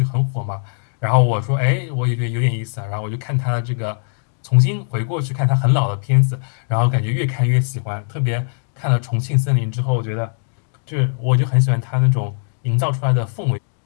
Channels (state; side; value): silent; right; digital silence